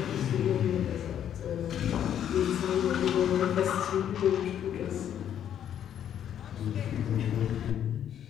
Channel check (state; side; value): quieter; right; 9.9 dB